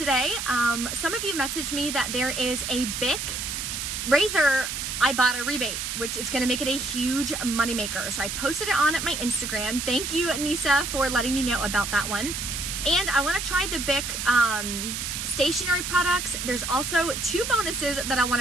Some of you messaged me that there is a Bic razor Ibotta rebate, which is gonna make it a huge moneymaker. So I posted it on at my Instagram. Thank you, Nisa, for letting me know about that one. And I wanna try the Bic stationery products. There's also 2 bonuses that I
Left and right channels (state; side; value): noise; right; hiss, 4 dB below the sound